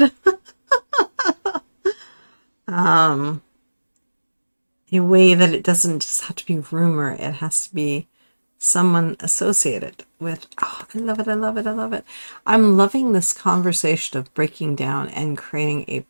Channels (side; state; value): both; inverted; correlation -1.00